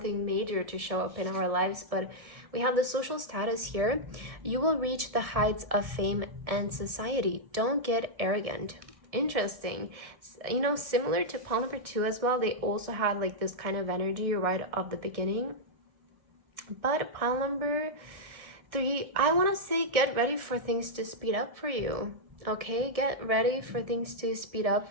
major to show up in our lives. But we have the social status here. You will reach the heights of fame and society. Don't get arrogant. Interesting. You know, similar to pile number 2 as well, they also had like this kind of energy right off the beginning. But pile number 3, I want to say get ready for things to speed up for you. Okay, get ready for things to speed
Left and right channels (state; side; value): late; left; 1.6 ms